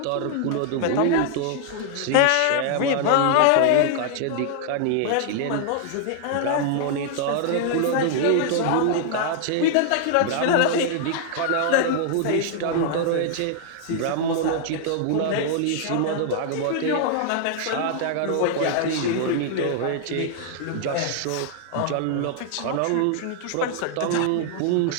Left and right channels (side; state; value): both; different; correlation -0.01